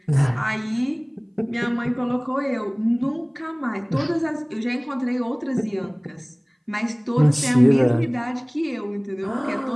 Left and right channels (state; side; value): identical; both; correlation 1.00